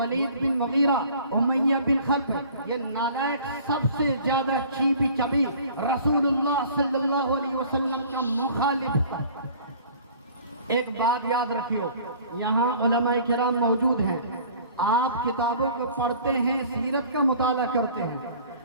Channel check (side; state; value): both; inverted; correlation -0.49